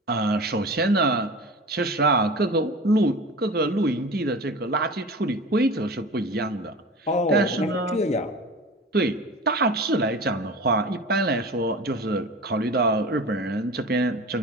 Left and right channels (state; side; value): normal; both; correlation 0.34